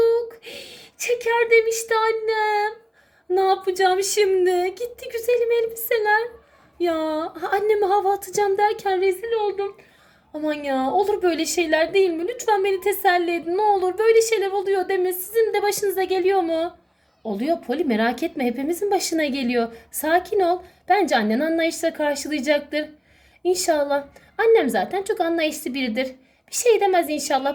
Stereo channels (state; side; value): identical; both; correlation 1.00